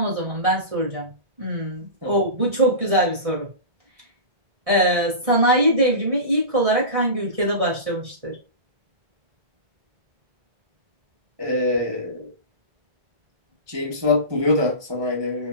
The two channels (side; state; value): left; late; 1.6 ms